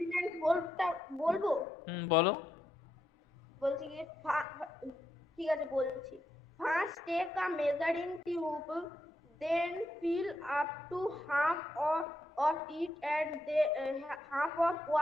বলবো বলো। বলছি কি ঠিক আছে বলছি। First take a measuring tube, then fill up to half of it and half of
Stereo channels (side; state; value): both; normal; correlation 0.82